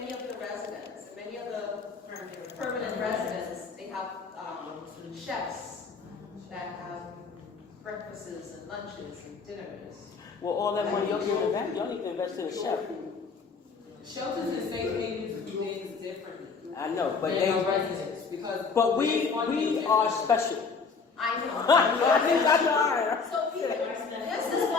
of the residents, many of the permanent residents, they have chefs that have breakfasts and lunches and dinners. well, all that money y'all give back, y'all need to invest in a chef. Shelters and safe havens do things differently. I know, but than our residents, because we are special. I know. That's So this is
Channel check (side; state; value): right; quieter; 5.0 dB